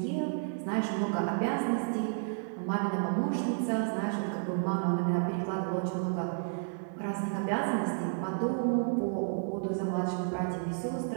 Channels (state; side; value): silent; left; digital silence